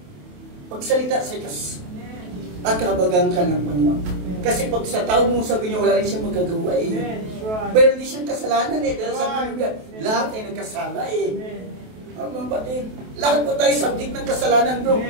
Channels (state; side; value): late; left; 28 ms